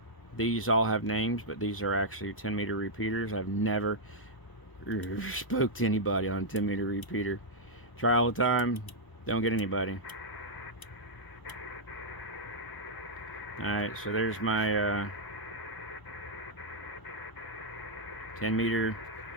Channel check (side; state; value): right; late; 1.0 ms